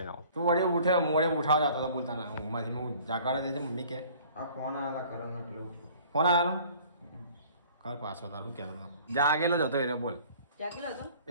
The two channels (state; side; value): inverted; both; correlation -0.50